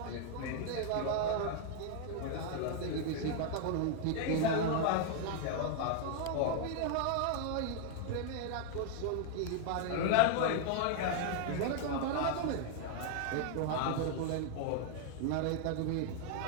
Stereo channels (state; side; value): different; both; correlation 0.00